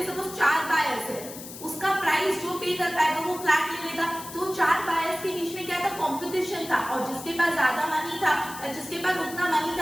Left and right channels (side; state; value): left; noise; hiss, 13 dB below the sound